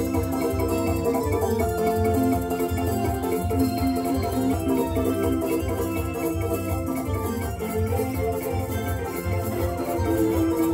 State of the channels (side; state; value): both; identical; correlation 1.00